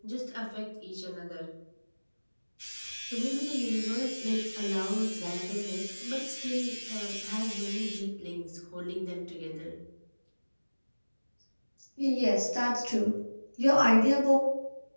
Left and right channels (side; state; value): both; inverted; correlation -1.00